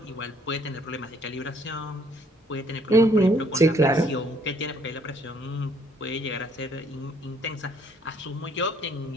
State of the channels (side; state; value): both; normal; correlation 0.64